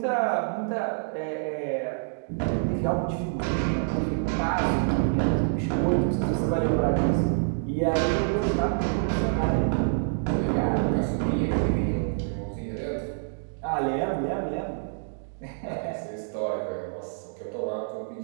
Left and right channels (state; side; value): silent; left; digital silence